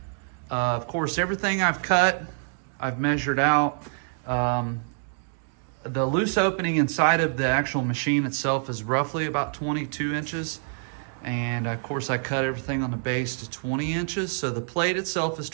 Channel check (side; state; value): left; silent; digital silence